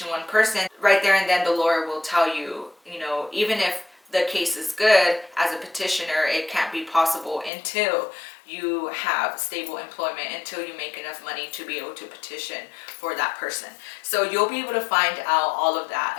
one person, right there and then the lawyer will tell you, even if the case is good, as a petitioner, it can't be possible until you have stable employment, until you make enough money to be able to petition for that person. So you'll be able to find out all of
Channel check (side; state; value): right; drops out; at 7.5 s